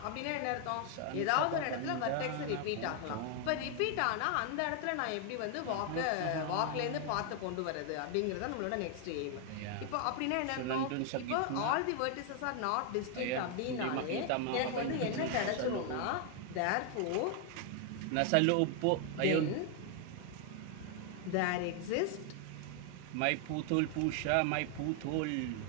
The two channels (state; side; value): different; both; correlation 0.00